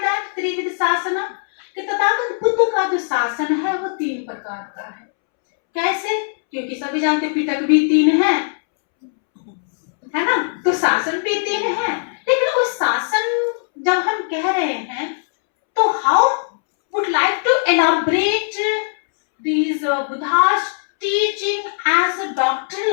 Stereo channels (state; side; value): silent; right; 66 dB below the other